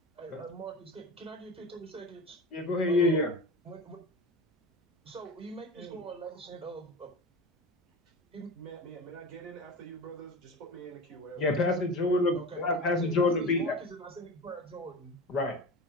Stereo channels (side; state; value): both; normal; correlation 0.30